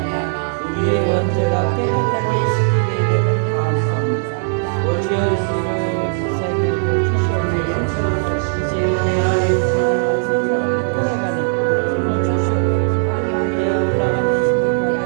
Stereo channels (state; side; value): silent; left; 58 dB below the other